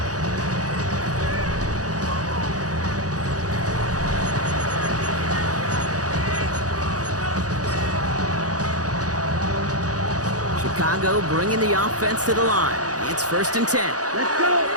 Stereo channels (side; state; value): left; late; 0.67 ms